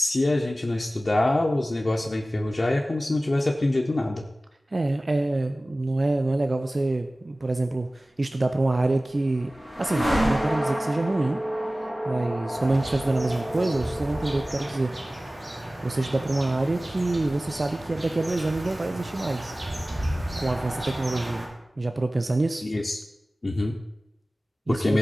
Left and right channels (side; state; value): both; normal; correlation 0.97